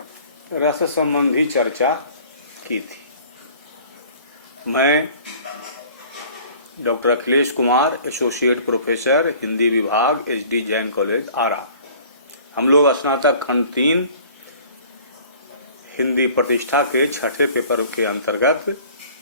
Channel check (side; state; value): both; inverted; correlation -0.49